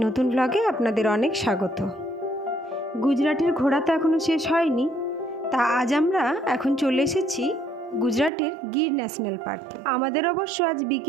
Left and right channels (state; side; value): drops out; left; at 8.3 s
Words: নতুন ব্লগে আপনাদের অনেক স্বাগত। গুজরাটের ঘোরা তো এখনও শেষ হয়নি, তা আজ আমরা এখন চলে এসেছি গুজরাটের গির ন্যাশনাল পার্কে। আমাদের অবশ্য আজ